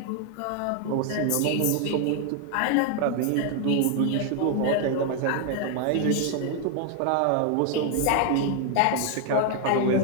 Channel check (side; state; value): both; different; correlation 0.00